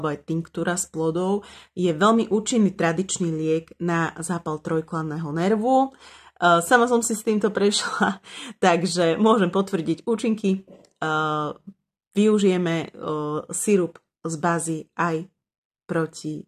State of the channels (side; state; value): both; identical; correlation 1.00